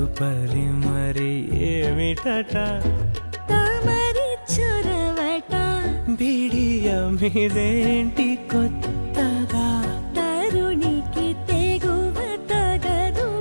మరి ఏమిటట తమరి చొరవట బిడియమిదేంటి కొత్తగా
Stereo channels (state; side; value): inverted; both; correlation -1.00